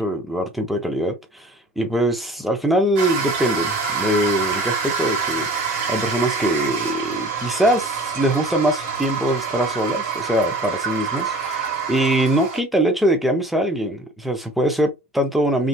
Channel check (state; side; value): normal; both; correlation 0.46